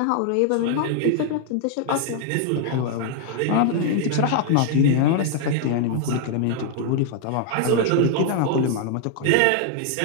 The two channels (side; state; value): both; different; correlation 0.00